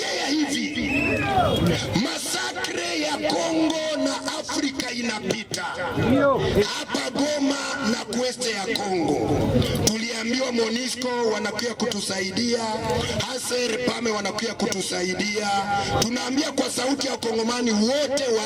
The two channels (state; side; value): identical; both; correlation 1.00